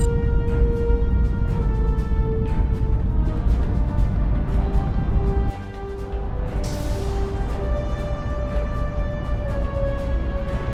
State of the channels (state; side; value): identical; both; correlation 1.00